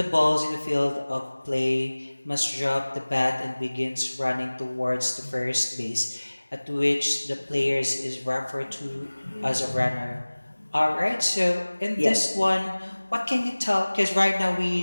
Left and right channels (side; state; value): both; inverted; correlation -1.00